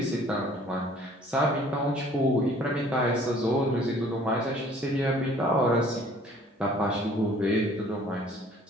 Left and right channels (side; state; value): both; normal; correlation 0.55